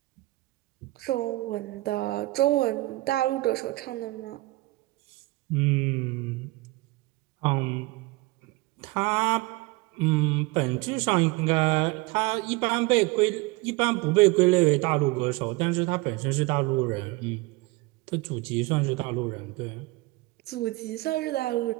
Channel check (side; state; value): left; quieter; 21.6 dB